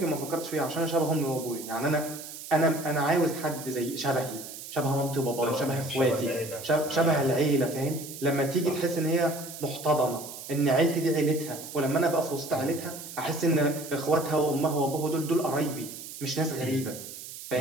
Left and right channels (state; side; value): noise; right; hiss, 12 dB below the sound